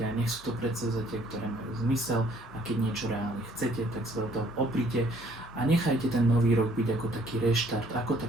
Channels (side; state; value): both; normal; correlation 0.61